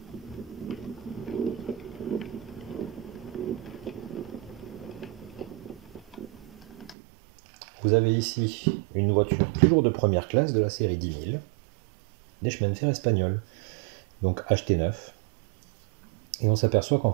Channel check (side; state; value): left; drops out; at 7.0 s